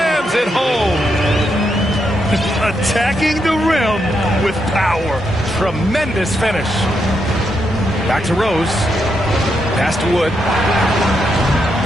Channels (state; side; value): normal; both; correlation 0.81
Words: it home. Attacking the rim with power. Tremendous finish. Back to Rose. Pass to Wood.